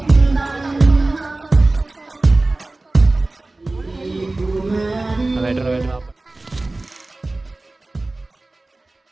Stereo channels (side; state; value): left; quieter; 3.0 dB